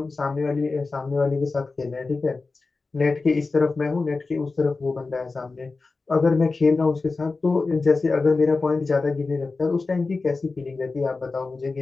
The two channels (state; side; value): quieter; right; 3.9 dB